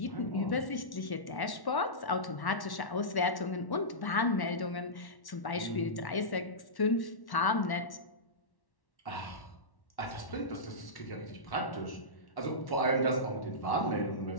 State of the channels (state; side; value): late; right; 1.1 ms